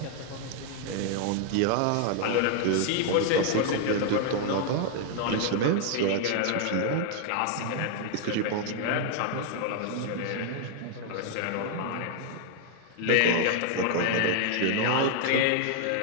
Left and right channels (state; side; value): different; both; correlation 0.00